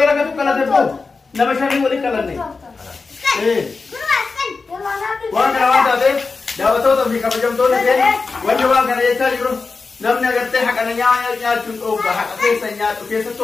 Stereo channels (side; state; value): right; quieter; 4.3 dB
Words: dalagatu qalate boo nama shanii walii qalanne waan kana waan taateef daawwattoota fi kabajamtoonni keenya wanni waan kana jechaa jiru namni agartee haqana nyaachuun dhoogga haqa keessa nyaatu